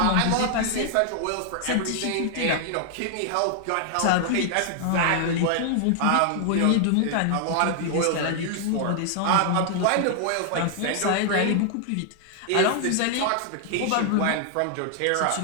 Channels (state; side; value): different; both; correlation 0.00